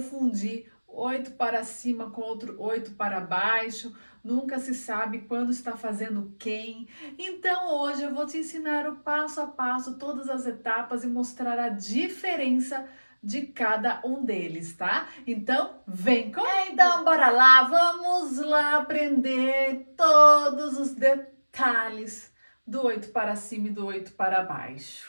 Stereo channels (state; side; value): inverted; both; correlation -1.00